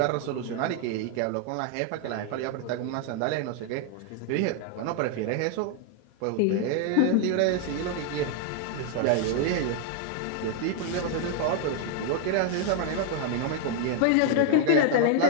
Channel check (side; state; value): both; different; correlation 0.00